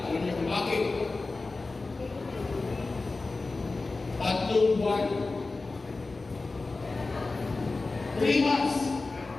Alam niyo kung bakit? 3 buwan. 3 months.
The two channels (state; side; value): quieter; right; 3.6 dB